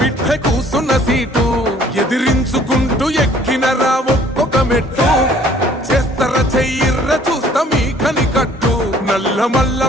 కూసున్న సీటు ఎదిరించుకుంటూ ఎక్కినరా ఒక్కొక్క మెట్టు చేస్తర చెయ్యిర్ర చూస్తా మీ కని కట్టు నల్ల మల్ల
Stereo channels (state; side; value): normal; both; correlation 0.57